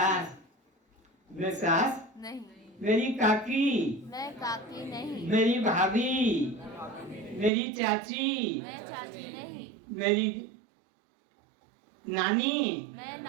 मैं सास नहीं। मेरी काकी, मैं काकी नहीं। मेरी भाभी, मेरी चाची, मैं चाची नहीं। मेरी नानी, मैं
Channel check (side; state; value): left; drops out; at 7.5 s